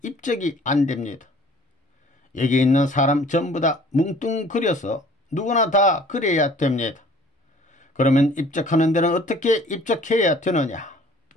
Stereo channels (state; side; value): normal; both; correlation 0.52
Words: 입적이 안 됩니다. 여기 있는 사람 전부 다 뭉뚱그려서 누구나 다 그래야 됩니다. 그러면 입적하는 데는 어떻게 입적해야 되느냐?